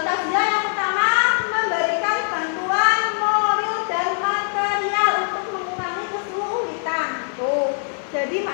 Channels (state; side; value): silent; right; digital silence